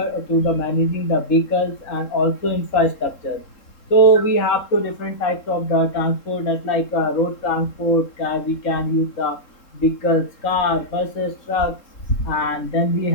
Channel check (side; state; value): right; late; 3.7 ms